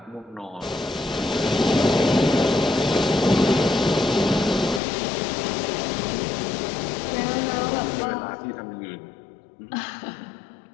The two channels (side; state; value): right; drops out; at 4.8 s